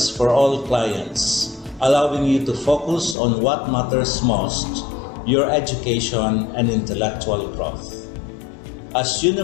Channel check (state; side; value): drops out; right; at 3.2 s